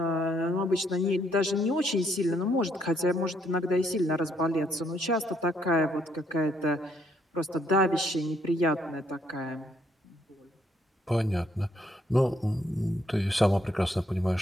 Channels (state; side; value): normal; both; correlation 0.70